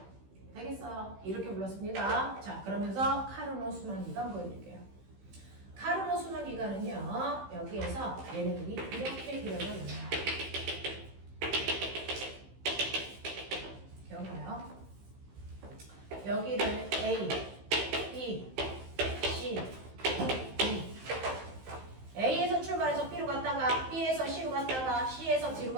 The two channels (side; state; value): left; late; 15 ms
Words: 되겠어? 이렇게 불렀습니다. 자, 그러면서 카르노 순환기간 보여드릴게요. 카르노 순환기간은요. 여기에서 얘네들이 이렇게 그려져요. 기억나요? 여기를 A, B, C, D. A에서 출발해서 B로 갔다가 B에서 C로 갔다가 C에서 D로